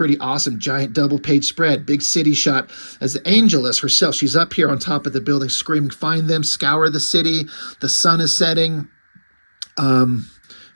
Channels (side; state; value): both; inverted; correlation -1.00